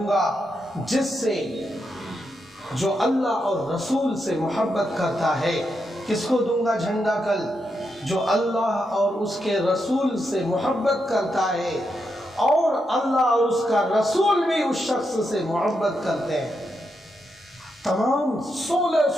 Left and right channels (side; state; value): both; normal; correlation 0.84